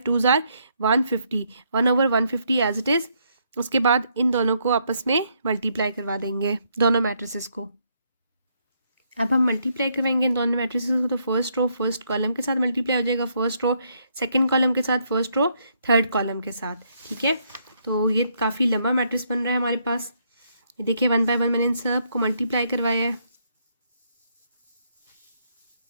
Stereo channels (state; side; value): inverted; both; correlation -0.73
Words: 2 जार 150, 1 ओवर 150 एज इट इज़। उसके बाद इन दोनों को आपस में मल्टीप्लाई करवा देंगे, दोनों मैट्रिसेस को। अब हम मल्टीप्लाई करवाएंगे इन दोनों मैट्रिसेस को, तो फर्स्ट रो फर्स्ट कॉलम के साथ मल्टीप्लाई हो जाएगा, फर्स्ट रो सेकंड कॉलम के साथ, फर्स्ट रो थर्ड कॉलम के साथ, ठीक है। तो ये काफ़ी लंबा मैट्रिक्स बन रहा है हमारे पास। ये देखिए 1 बाय 1 मैंने इन सब को मल्टीप्लाई करवाया है।